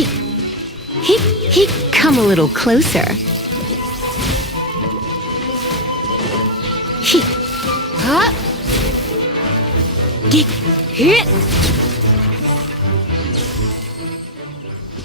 Come a little closer. Hit.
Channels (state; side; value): normal; both; correlation -0.02